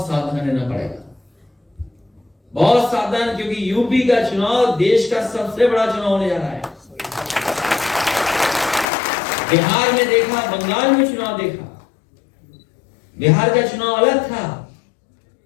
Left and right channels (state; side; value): drops out; right; at 8.8 s